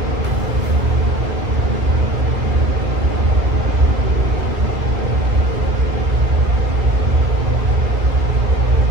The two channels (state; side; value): late; left; 2.4 ms